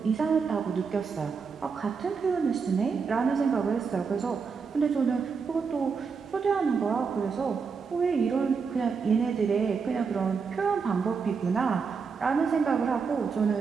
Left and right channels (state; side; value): quieter; left; 5.5 dB